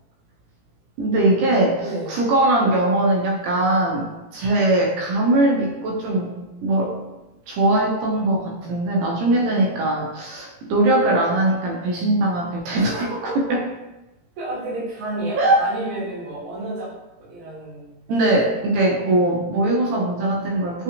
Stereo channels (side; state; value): left; late; 18 ms